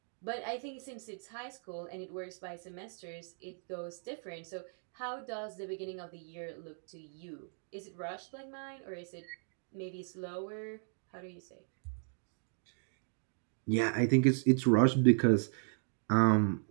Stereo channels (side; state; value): left; silent; 54 dB below the other